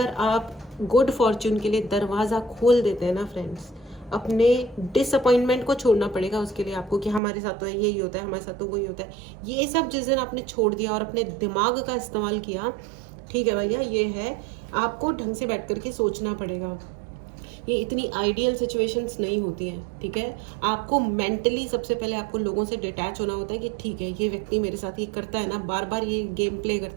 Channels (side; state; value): left; drops out; at 7.2 s